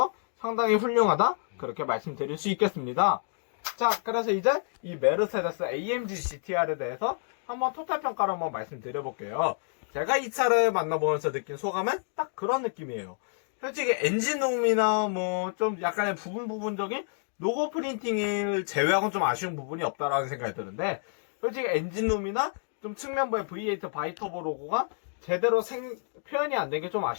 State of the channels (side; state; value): right; silent; 59 dB below the other